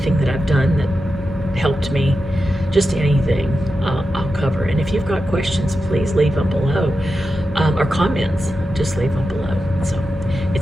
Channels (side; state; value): both; normal; correlation 0.90